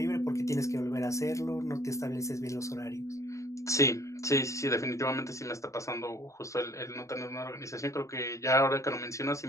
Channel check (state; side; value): late; right; 0.15 ms